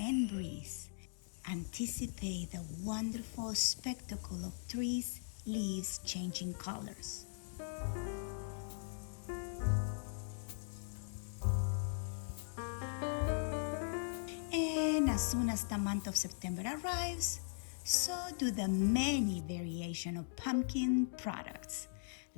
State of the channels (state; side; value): silent; right; digital silence